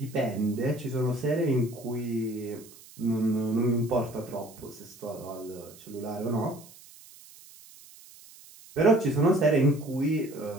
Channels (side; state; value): right; noise; hiss, 21 dB below the sound